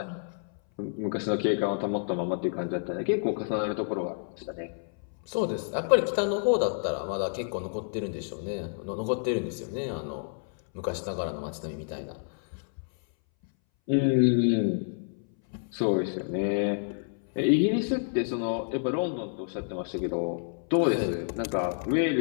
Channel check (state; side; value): silent; right; 58 dB below the other